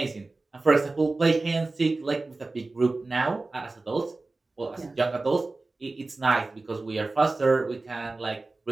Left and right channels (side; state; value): left; quieter; 3.3 dB